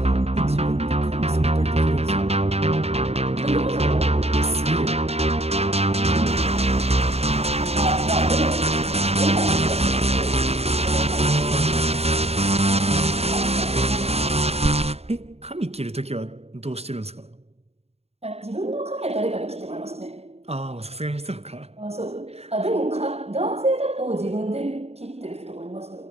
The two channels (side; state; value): left; late; 0.30 ms